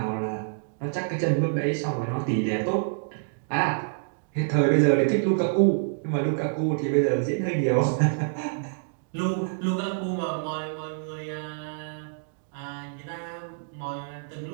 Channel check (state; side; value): silent; left; digital silence